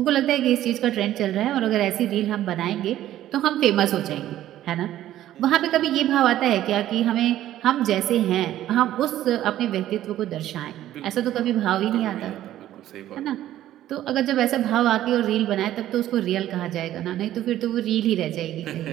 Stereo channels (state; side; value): quieter; left; 13.0 dB